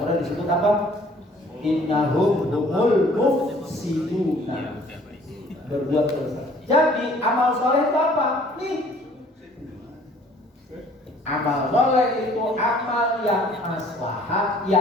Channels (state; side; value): normal; both; correlation 0.56